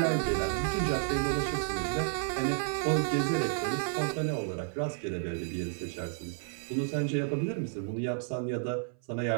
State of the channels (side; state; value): left; silent; 57 dB below the other